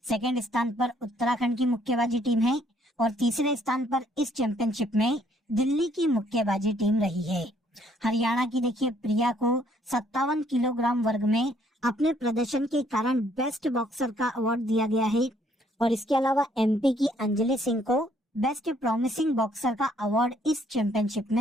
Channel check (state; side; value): normal; both; correlation 0.66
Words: सेकंड स्थान पर उत्तराखंड की मुक्केबाजी टीम है और तीसरे स्थान पर इस चैंपियनशिप में दिल्ली की मुक्केबाजी टीम रही है। हरियाणा की देखिए प्रिया को 57 किलोग्राम वर्ग में अपने प्रदर्शन के कारण बेस्ट बॉक्सर का अवार्ड दिया गया है और इसके अलावा एमपी की अंजलि सिंह को बेस्ट प्रॉमिसिंग बॉक्सर का अवार्ड इस चैंपियनशिप